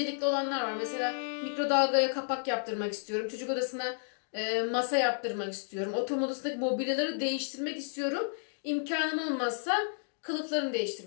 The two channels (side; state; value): right; silent; digital silence